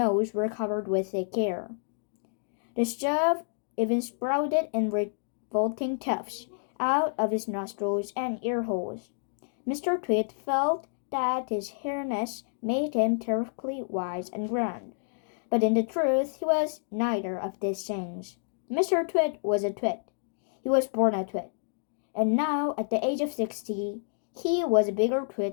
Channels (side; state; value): right; silent; digital silence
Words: were covered with thick hair. The stuff even sprouted in revolting tufts out of his nostrils and ear holes. Mr. Twit felt that his hairness made him terribly wise and grand, but in the truth he was neither of these things. Mr. Twit was a twit. He was born a twit, and now at the age of 60, he was a bigger